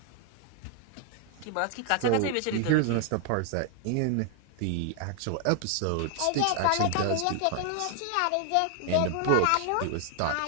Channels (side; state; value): both; different; correlation 0.00